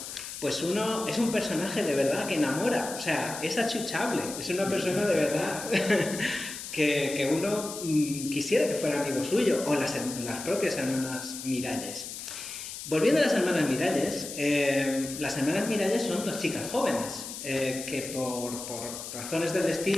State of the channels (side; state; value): left; noise; hiss, 9 dB below the sound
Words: pues uno es un personaje de verdad que enamora. O sea, es achuchable, es una persona de verdad que uno quisiera que fuera amigo suyo, o las propias hermanas Miralles. Volviendo a las hermanas Miralles son dos chicas jóvenes que por razones del